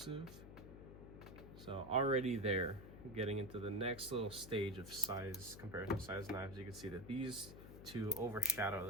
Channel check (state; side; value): noise; left; hum, 13 dB below the sound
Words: So already there, getting into the next little stage of size comparison size knives, you can see that these 2 overshadow